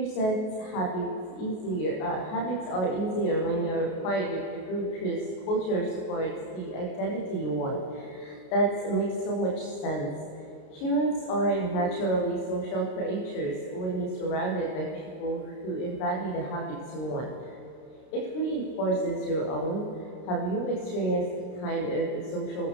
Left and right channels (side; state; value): right; late; 32 ms